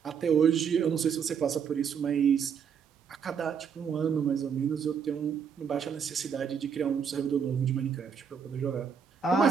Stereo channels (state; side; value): quieter; left; 7.0 dB